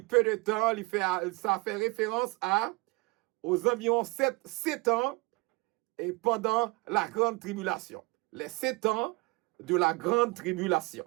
peu de temps, ça fait référence aux environs 7 ans et pendant la grande tribulation. Les 7 ans de la grande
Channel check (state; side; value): quieter; left; 25.7 dB